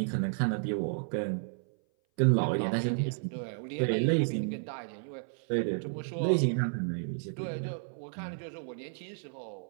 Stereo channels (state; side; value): silent; left; 56 dB below the other